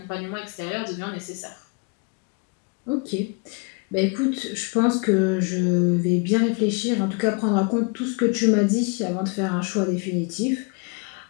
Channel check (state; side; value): quieter; right; 33.7 dB